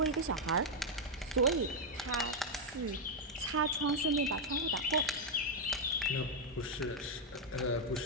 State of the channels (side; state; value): both; normal; correlation 0.00